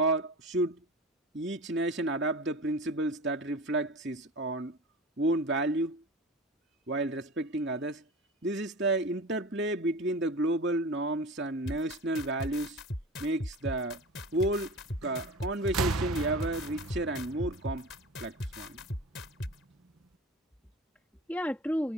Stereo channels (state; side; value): normal; both; correlation 0.33